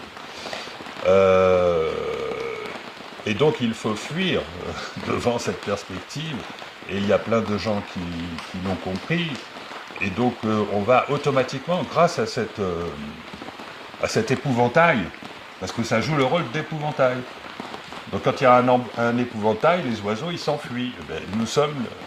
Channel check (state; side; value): identical; both; correlation 1.00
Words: Et donc il faut fuir devant cette perspective, et il y a plein de gens qui l'ont compris, et donc on va automatiquement, grâce à cet épouvantail, parce que ça joue le rôle d'épouvantail. Donc quand il y a un épouvantail, les oiseaux ils s'enfuient. Eh bien, nous sommes